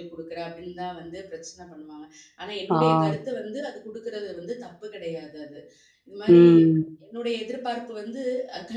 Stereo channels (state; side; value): identical; both; correlation 1.00